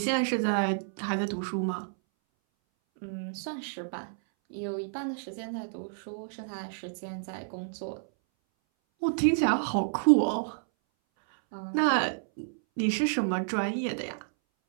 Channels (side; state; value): left; silent; 58 dB below the other